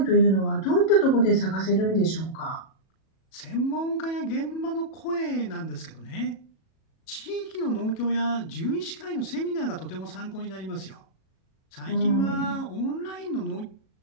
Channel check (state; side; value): late; right; 37 ms